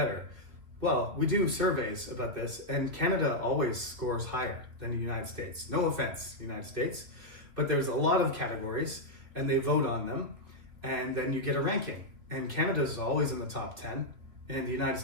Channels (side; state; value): left; late; 2.9 ms